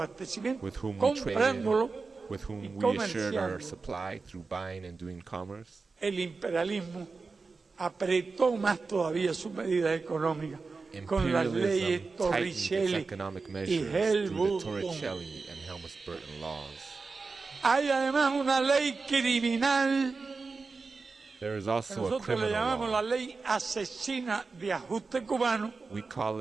with whom we traded, comprándolo with y whom we assured our comerciando, supply through buying and doing commerce, el imperialismo apretó más todavía sus medidas económicas con las imperialism leyes tightened its Torricelli economic y measures through the Helmut-Kohl. Torricelli and Helmut-Burton laws. Hay además una ley criminal There is que also a nosotros le criminal llamamos la law. ley asesina de ajuste cubano, We call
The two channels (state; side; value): quieter; left; 4.3 dB